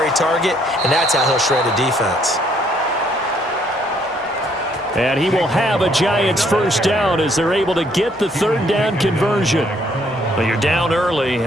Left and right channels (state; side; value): normal; both; correlation 0.67